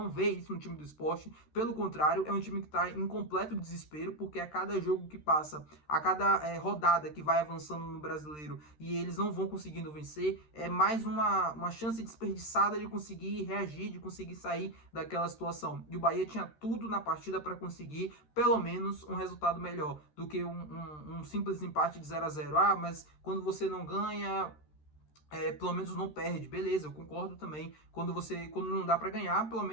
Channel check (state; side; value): late; right; 13 ms